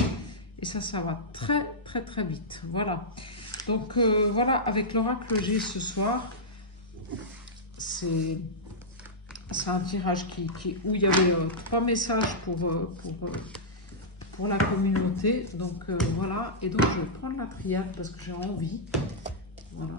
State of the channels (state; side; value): normal; both; correlation -0.10